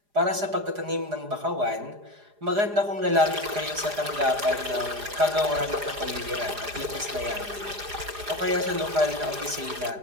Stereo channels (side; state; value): left; late; 4.9 ms